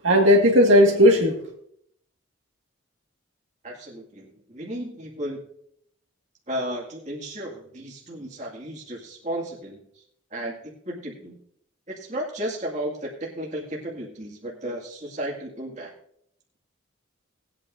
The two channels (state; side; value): normal; both; correlation 0.14